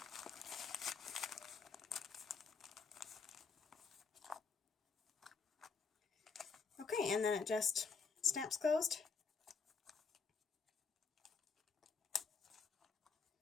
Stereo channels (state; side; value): quieter; right; 5.2 dB